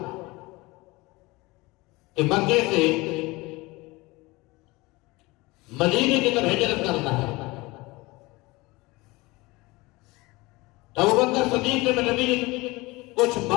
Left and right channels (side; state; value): right; quieter; 22.5 dB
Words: کہ مکے سے مدینے کی طرف ہجرت کرنا ہے، تو ابوبکر صدیق نے نبی نے کچھ